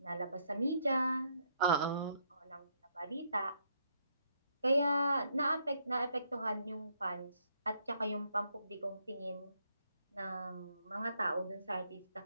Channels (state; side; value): inverted; both; correlation -0.73